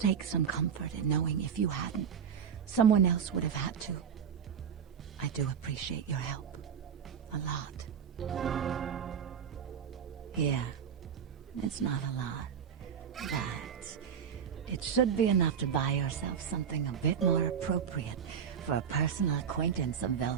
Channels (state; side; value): quieter; left; 7.6 dB